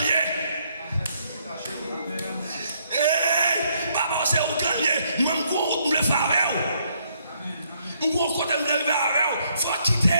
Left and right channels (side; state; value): both; inverted; correlation -0.71